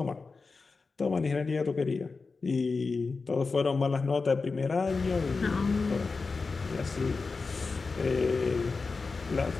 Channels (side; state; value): right; quieter; 4.3 dB